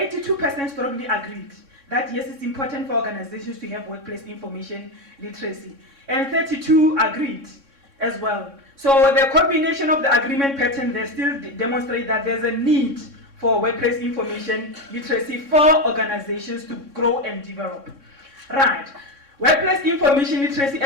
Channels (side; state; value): left; late; 3.6 ms